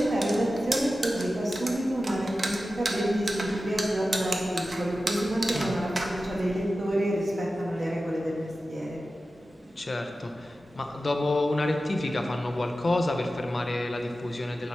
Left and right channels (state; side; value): normal; both; correlation 0.94